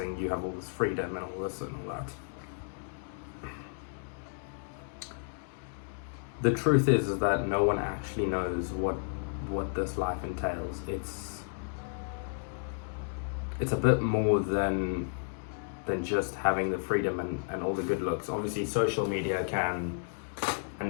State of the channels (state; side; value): silent; right; digital silence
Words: You have all this freedom and all this and all that. The truth is that no one actually knows what this life entails. It's a bit more than just having the freedom and all the good looks. Obviously, social media can